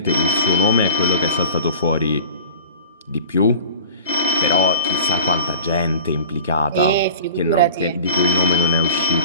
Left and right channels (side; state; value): both; inverted; correlation -0.38